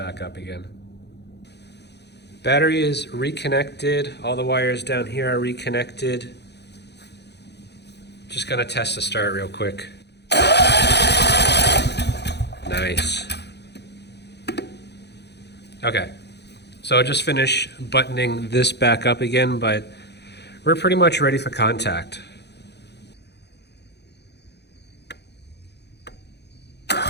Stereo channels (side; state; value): right; late; 0.49 ms